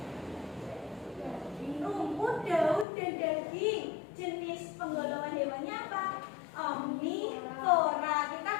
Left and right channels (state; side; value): drops out; right; at 2.9 s